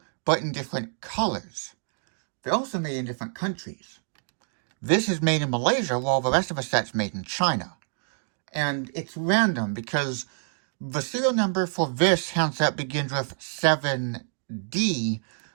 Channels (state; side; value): silent; left; digital silence